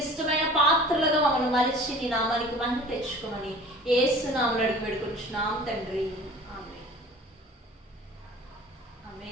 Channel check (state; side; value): normal; both; correlation 0.44